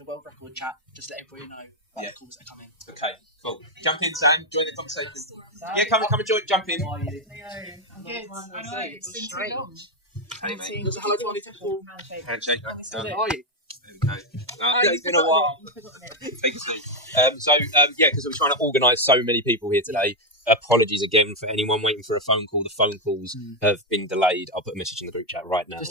world record chat, just let everybody know about the calls that are coming. Okay, cool. Jump in, Sam. Join the conversation. Come and join. Jump in. I'm good. I know. It's been too long. Hey, mate. Handshake. How are you? It's been a while. Take a seat. Because we're trying to organise so many people here today. Apologies again for anyone waiting for a phone call. The phone calls have been delayed. I'll put a message in the group chat right now.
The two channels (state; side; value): normal; both; correlation 0.04